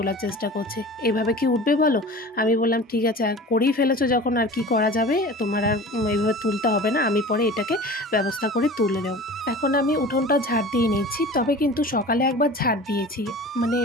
চেষ্টা করছে। এভাবে কি উঠবে বলো? আমি বললাম ঠিক আছে, আর করেই ফেলেছো যখন আর কি করা যাবে, তোমার আর এইভাবে তুলতে হবে না, আমি পরে এটাকে ব্যবস্থা করে তুলে নেব। এখন আমি উঠোনটা ঝাড় দিয়ে নিচ্ছি। তবে কিন্তু সকালে একবার ঝাড় দিয়েছি, মানে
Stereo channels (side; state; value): both; normal; correlation 0.38